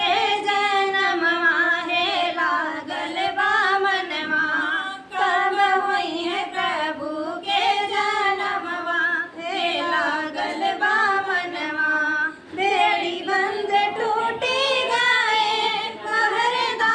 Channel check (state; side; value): identical; both; correlation 1.00